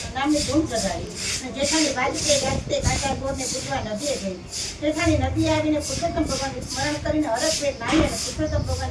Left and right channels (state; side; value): identical; both; correlation 1.00